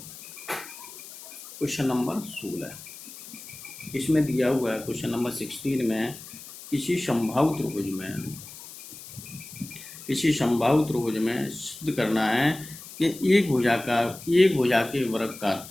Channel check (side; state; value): left; noise; hiss, 15 dB below the sound